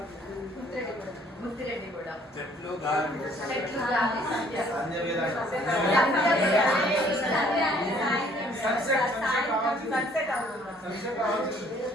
Muthireddy కూడా. చెట్లు గాలి. చెట్లు గాలి సంధ్య.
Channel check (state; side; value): normal; both; correlation 0.60